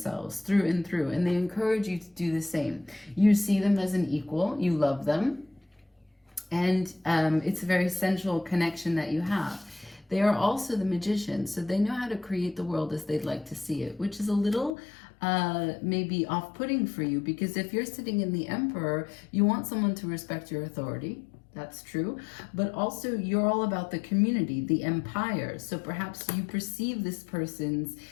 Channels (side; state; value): right; drops out; at 14.8 s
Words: through and through, and they encourage you to do the same. You see them as an equal. You love them. And it's a very sensual connection that you have. They are also the Magician, so they know how to create the world as they'd like to see it, which is a little maybe off-putting for you, because if you're sitting in the Emperor, you want someone to respect your authority. That's true. But also you're all about the community, the empire. So perhaps you perceive this person's